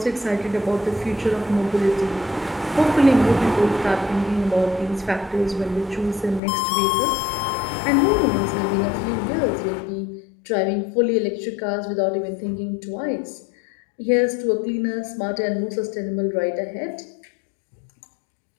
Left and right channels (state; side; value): drops out; right; at 6.4 s